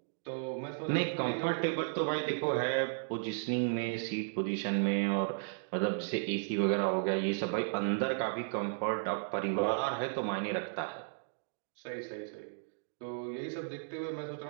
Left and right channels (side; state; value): left; silent; digital silence